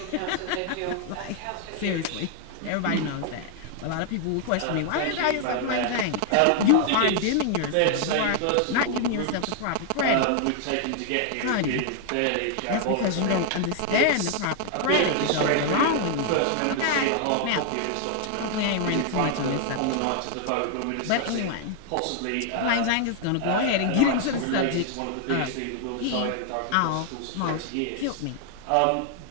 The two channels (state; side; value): different; both; correlation 0.00